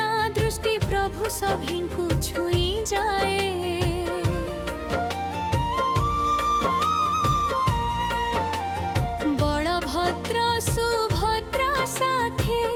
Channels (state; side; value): identical; both; correlation 1.00